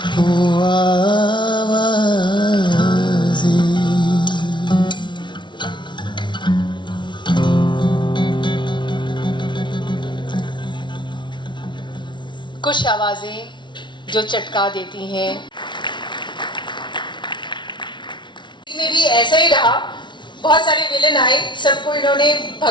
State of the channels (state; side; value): late; right; 0.23 ms